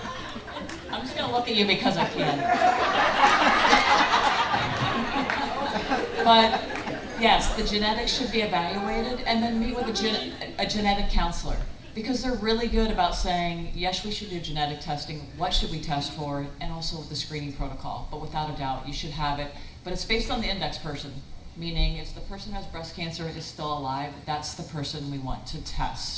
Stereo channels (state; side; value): identical; both; correlation 1.00